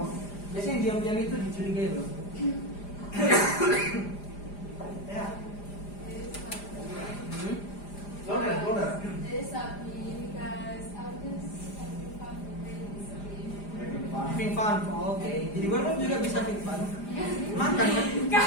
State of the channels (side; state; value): right; late; 4.9 ms